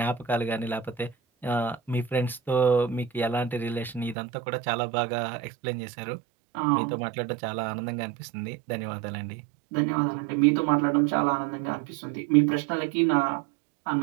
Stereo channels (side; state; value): left; drops out; at 4.2 s